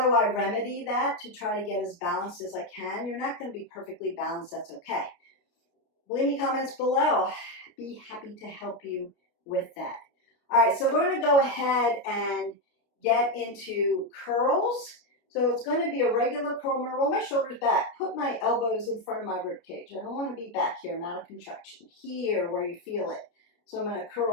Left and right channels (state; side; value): late; right; 29 ms